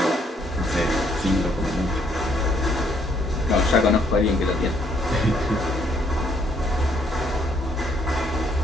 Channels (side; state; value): both; normal; correlation 0.68